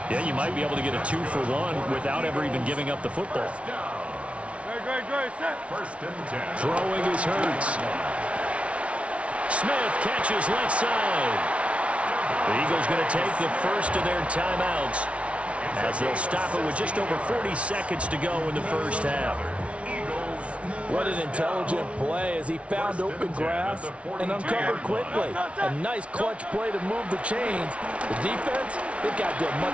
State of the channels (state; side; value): late; left; 0.062 ms